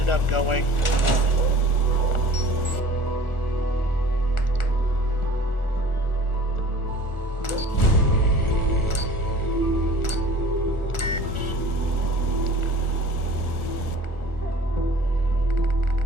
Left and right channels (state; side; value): late; right; 1.4 ms